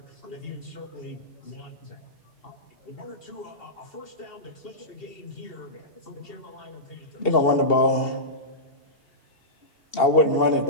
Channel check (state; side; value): late; right; 2.7 ms